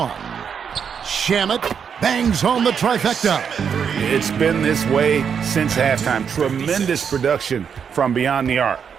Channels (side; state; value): left; quieter; 7.1 dB